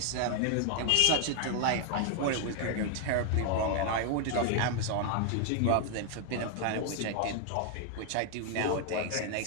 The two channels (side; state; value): both; different; correlation 0.00